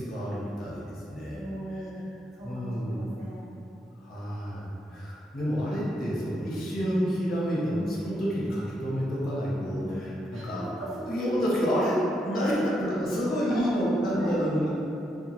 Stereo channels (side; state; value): both; normal; correlation 0.80